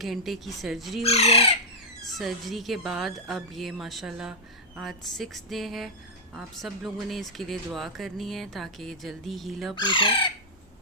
घंटे की सर्जरी हुई है। सर्जरी के बाद अब ये माशाल्लाह आज 6 डे है। आप सब लोगों ने इसके लिए दुआ करनी है ताकि ये जल्दी हील अप हो जाए।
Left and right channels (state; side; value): normal; both; correlation -0.09